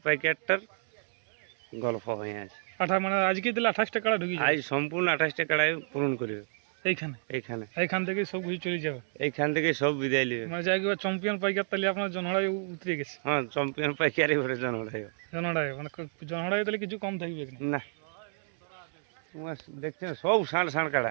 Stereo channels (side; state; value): left; silent; digital silence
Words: প্যাকেটটার গল্প হয়ে আছে। মানে আজকে দিলে 28টা কাড়া ঢুকি আজ সম্পূর্ণ 28টা কাড়াই পূরণ করবে এইখান থেকে সব কিছু চলে যাবে। এইখান থেকে সব বিদায় নেবে। মানে যাই চ্যাম্পিয়ন পাইকার তাহলে আপনার জনহড়াই উতরে গেছে। হ্যাঁ, চ্যাম্পিয়ন পাইকারি ঘরে জনহড়াই মানে জনহড়াই তাহলে কিছু কম থাকবে না। তোমার দেখছেন সব ষাঁড় ষাঁড়